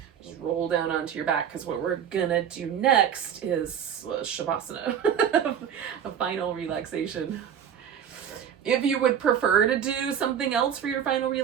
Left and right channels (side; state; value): left; quieter; 8.5 dB